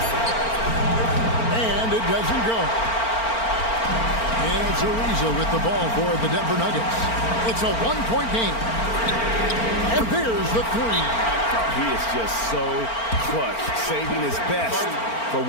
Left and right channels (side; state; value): right; late; 4.4 ms